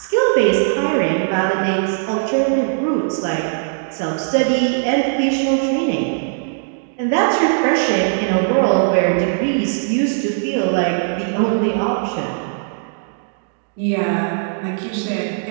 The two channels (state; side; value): silent; left; digital silence